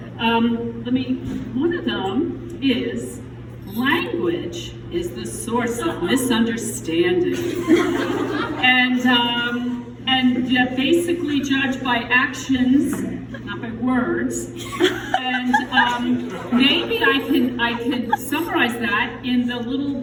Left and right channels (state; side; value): identical; both; correlation 1.00